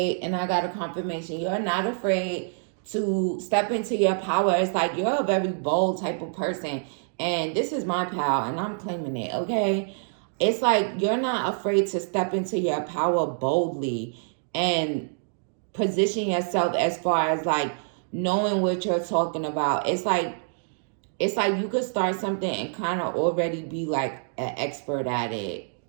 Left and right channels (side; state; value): left; silent; digital silence